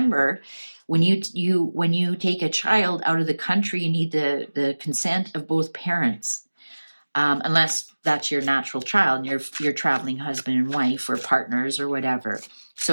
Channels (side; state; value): both; inverted; correlation -1.00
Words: when you take a child out of the country, you need the consent of both parents. Unless that's your natural child and you're traveling husband and wife or partners or whatever.